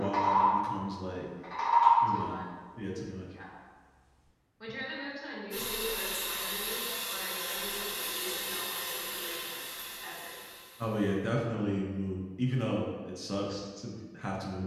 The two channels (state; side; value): identical; both; correlation 1.00